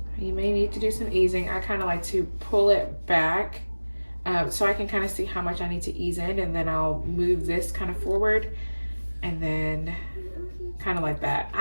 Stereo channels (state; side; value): inverted; both; correlation -1.00